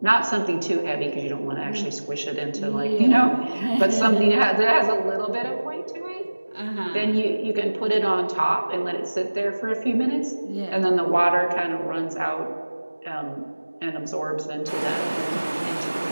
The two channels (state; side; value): inverted; both; correlation -1.00